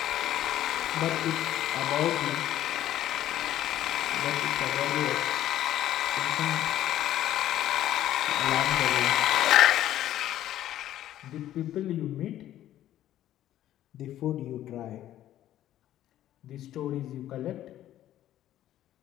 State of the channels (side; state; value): right; quieter; 12.7 dB